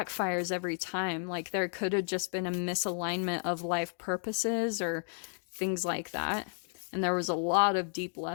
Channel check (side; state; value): right; silent; 56 dB below the other